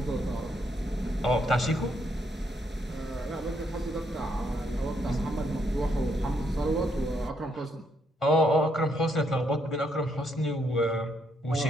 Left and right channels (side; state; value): both; normal; correlation 0.74